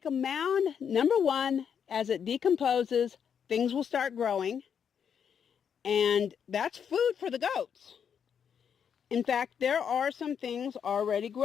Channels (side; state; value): right; quieter; 7.6 dB